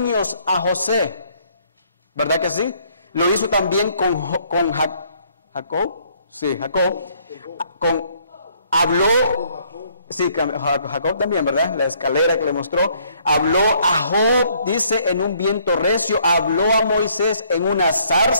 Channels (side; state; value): both; inverted; correlation -0.65